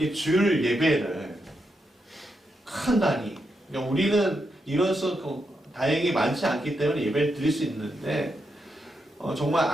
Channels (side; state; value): both; normal; correlation 0.84